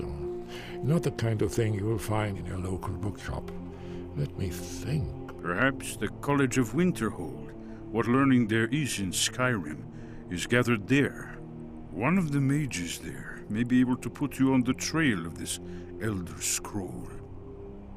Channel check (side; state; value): both; identical; correlation 1.00